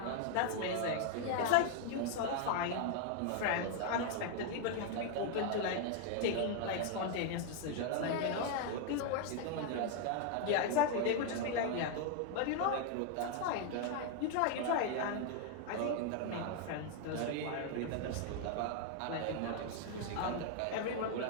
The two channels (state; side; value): different; both; correlation 0.00